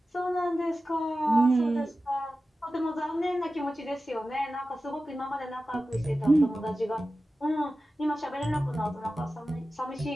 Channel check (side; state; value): both; normal; correlation 0.94